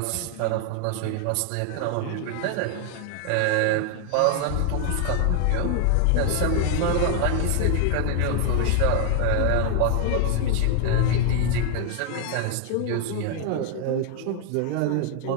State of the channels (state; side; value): different; both; correlation 0.00